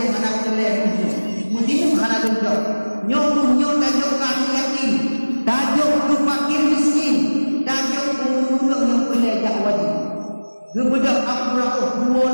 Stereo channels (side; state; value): both; inverted; correlation -1.00